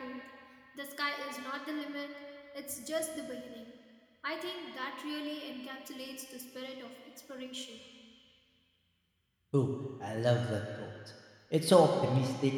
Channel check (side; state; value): both; identical; correlation 1.00